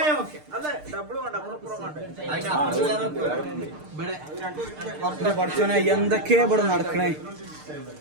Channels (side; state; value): left; late; 6.6 ms